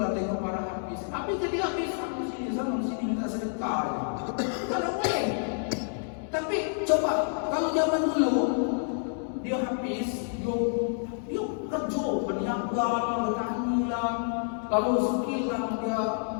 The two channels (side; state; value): right; silent; digital silence